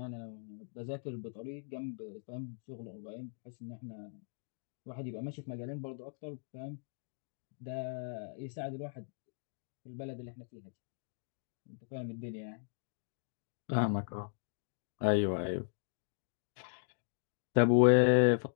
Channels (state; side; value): silent; right; digital silence